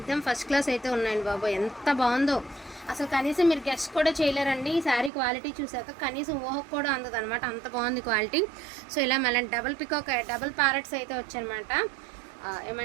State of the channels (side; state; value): left; drops out; at 5.1 s